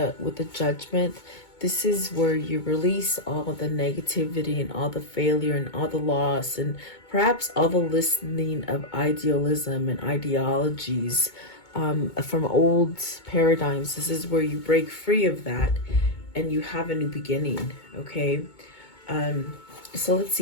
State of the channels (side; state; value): right; late; 2.2 ms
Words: Judgment, this is where you release all the negativity and all the failure and all the loss and perhaps all the listening of idealism and ideologies from old paradigms. This is where you break free of that and you have a new beginning. Okay, so let's